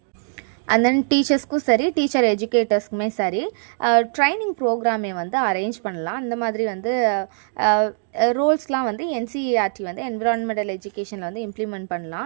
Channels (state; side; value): silent; left; digital silence